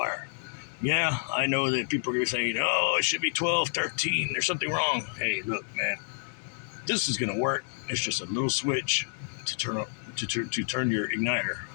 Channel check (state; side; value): silent; right; digital silence